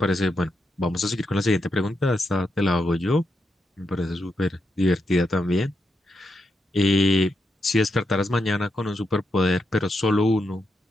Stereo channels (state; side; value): normal; both; correlation 0.84